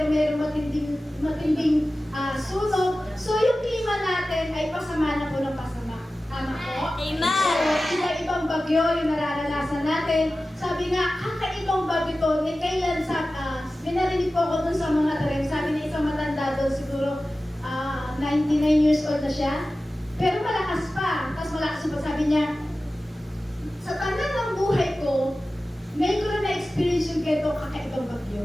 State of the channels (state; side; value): normal; both; correlation 0.95